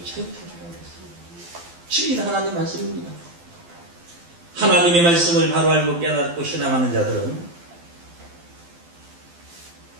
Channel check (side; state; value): left; late; 12 ms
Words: 자유케 하리라 그랬어요. 진리는 하나님 말씀입니다. 하나님의 말씀을 바로 알고 깨닫고 신앙하는 자들은